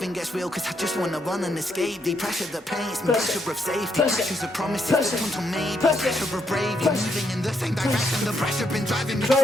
gets real, cause I just wanna run and escape thee. Pressure that paints me, pressure of safety, pressures of promises that turn to maybe, pressure of bravely moving in the same direction. The pressure been driving me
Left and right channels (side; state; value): both; normal; correlation 0.77